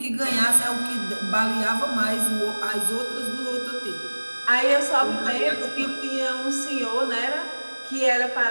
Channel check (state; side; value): inverted; both; correlation -1.00